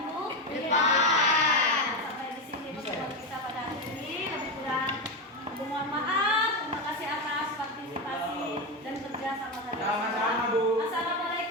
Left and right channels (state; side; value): normal; both; correlation 0.13